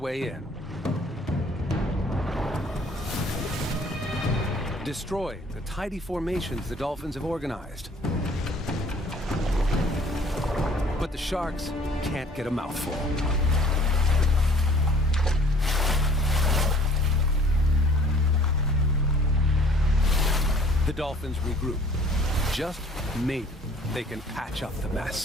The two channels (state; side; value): normal; both; correlation 0.54